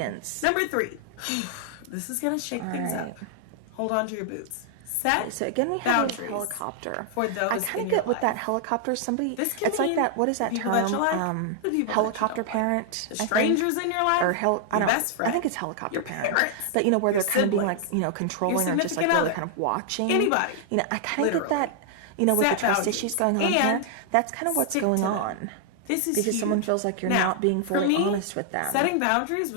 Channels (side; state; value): both; different; correlation 0.00